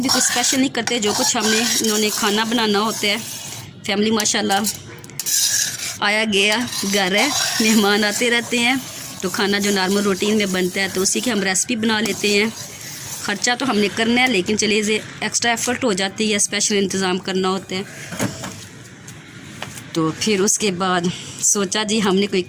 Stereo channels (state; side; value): identical; both; correlation 1.00